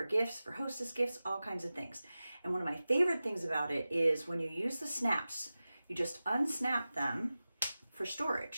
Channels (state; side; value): inverted; both; correlation -0.95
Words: gifts, for hostess gifts, all kinds of things. And one of my favorite things about it is when you use the snaps, you just unsnap them for